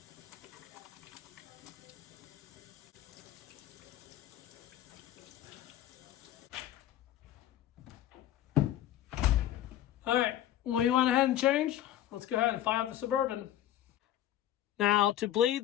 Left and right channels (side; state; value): right; quieter; 12.5 dB